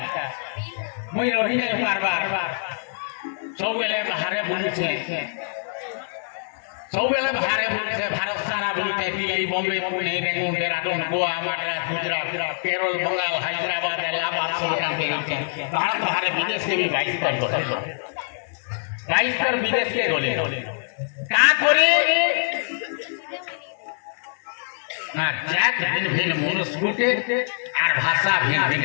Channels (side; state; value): right; silent; digital silence